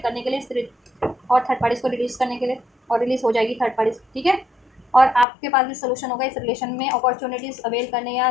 करने के लिए, और थर्ड पार्टीज़ को रिलीज़ करने के लिए, और रिलीज़ हो जाएगी थर्ड पार्टीज़। ठीक है, और आपके पास भी सोल्यूशन होगा इस रिलेशन में अपॉर्चुनिटीज़ अवेल करने या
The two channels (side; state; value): right; drops out; at 5.2 s